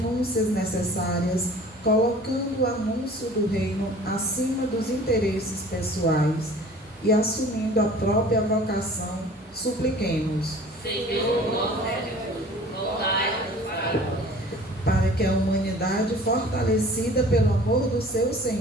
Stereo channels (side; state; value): both; normal; correlation 0.47